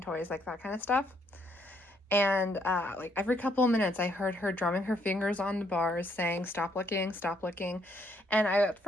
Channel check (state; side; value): normal; both; correlation 0.71